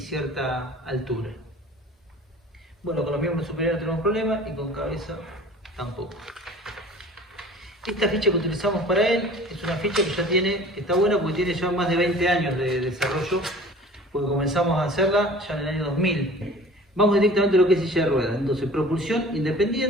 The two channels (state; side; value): normal; both; correlation 0.44